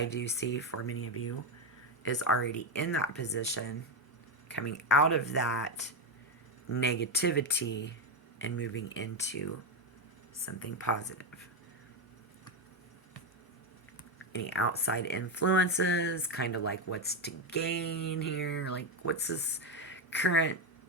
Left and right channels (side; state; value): both; normal; correlation 0.09